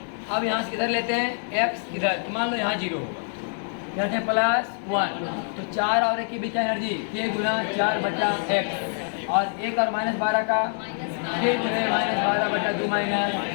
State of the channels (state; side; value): silent; right; 61 dB below the other